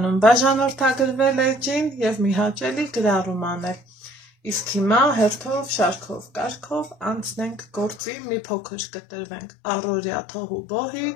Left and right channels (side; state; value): right; drops out; at 8.0 s